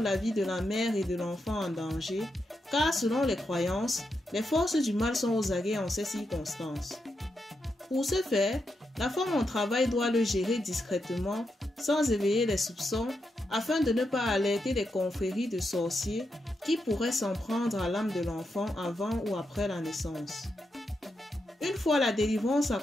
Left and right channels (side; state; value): both; normal; correlation 0.85